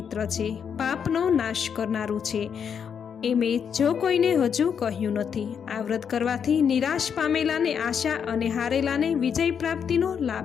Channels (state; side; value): quieter; right; 7.4 dB